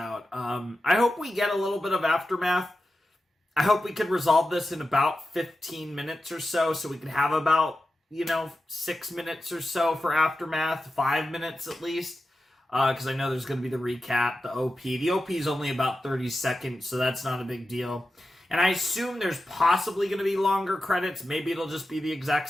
I hope we get a little bit of aftermath. I hope we can resolve this in about 15 minutes or so we can have about, 6 minutes or so for aftermath, 5 minutes at least. Because I know there's going to be the recap, the OP. The OP is only about 30 seconds, so that's not a big deal. And I assume there's possibly going to be longer credits. Maybe it'll just be the exact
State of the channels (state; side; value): normal; both; correlation 0.91